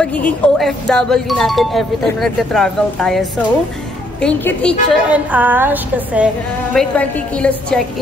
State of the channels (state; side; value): normal; both; correlation 0.69